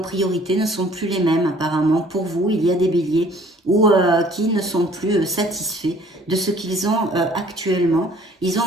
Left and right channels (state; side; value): normal; both; correlation 0.55